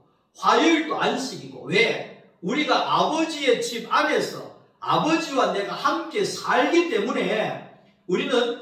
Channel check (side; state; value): both; identical; correlation 1.00